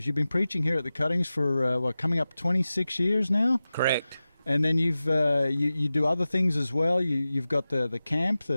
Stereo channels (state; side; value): inverted; both; correlation -0.95